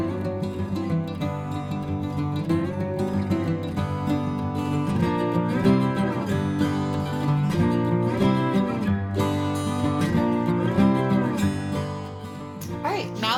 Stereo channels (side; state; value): both; identical; correlation 1.00